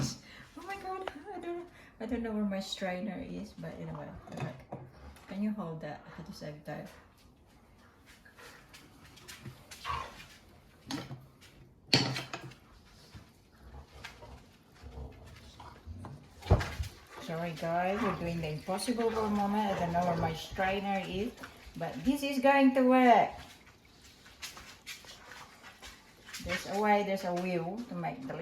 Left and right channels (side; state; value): both; identical; correlation 1.00